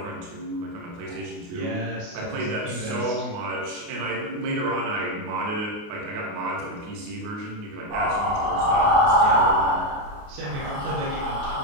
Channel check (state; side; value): late; left; 28 ms